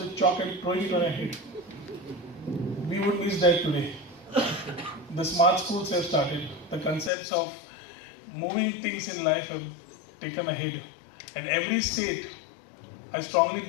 chalk and throwing it on our head. We would miss that today. The smart schools have started. The concepts of moving things in life have taken ahead. And every state, I strongly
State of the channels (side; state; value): right; drops out; at 7.1 s